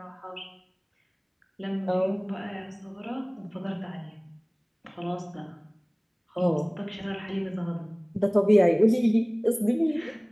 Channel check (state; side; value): identical; both; correlation 1.00